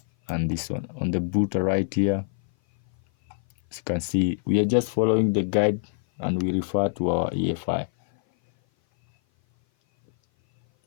and this one. On the booter right here, as you can see, we are just following the guide and we refer to our EFI.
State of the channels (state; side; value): silent; right; 57 dB below the other